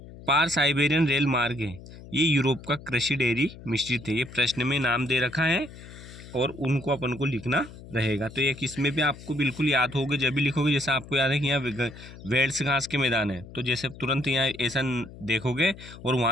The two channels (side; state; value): left; noise; hum, 17 dB below the sound